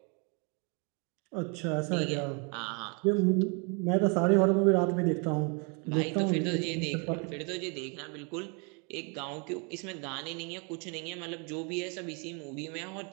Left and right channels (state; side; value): quieter; left; 34.4 dB